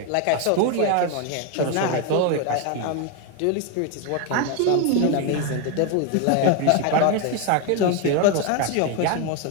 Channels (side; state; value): both; different; correlation 0.02